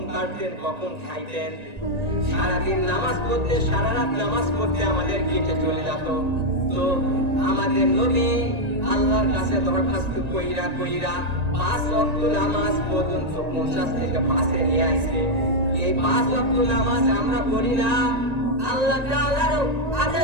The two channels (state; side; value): late; left; 1.9 ms